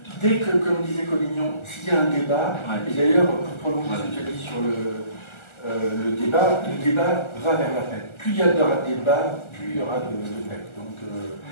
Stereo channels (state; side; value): late; right; 1.4 ms